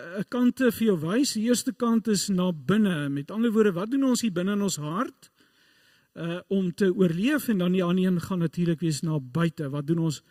kante vir jou wys. Die eerste kant is na binne. Met ander woorde, wat doen ons hier binne in ons hart om te oorleef, en dan die ander een gaan natuurlik wees na buite. Wat doen ons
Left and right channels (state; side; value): identical; both; correlation 1.00